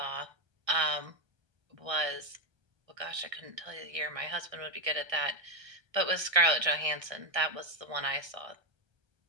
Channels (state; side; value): late; left; 1.6 ms